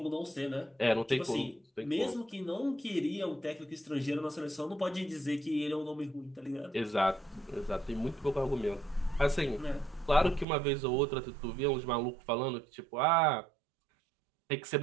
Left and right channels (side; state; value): left; drops out; at 10.5 s